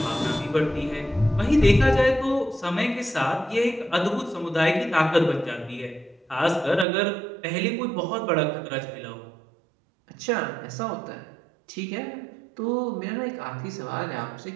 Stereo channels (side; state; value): left; drops out; at 6.9 s